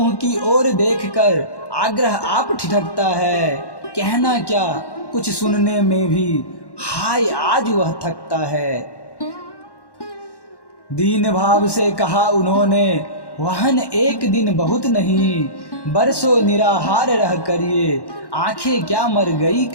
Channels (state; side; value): late; right; 1.1 ms